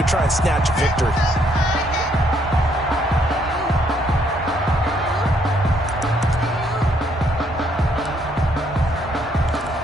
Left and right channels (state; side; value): normal; both; correlation 0.70